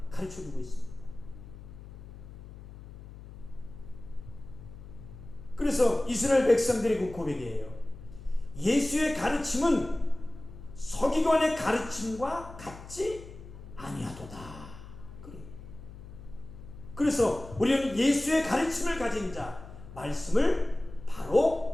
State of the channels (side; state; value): left; noise; hum, 15 dB below the sound